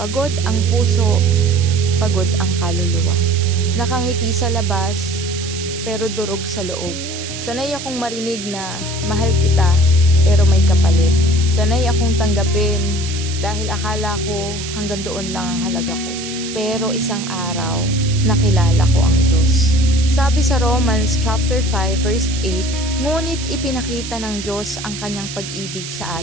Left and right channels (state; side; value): noise; right; hiss, 9 dB below the sound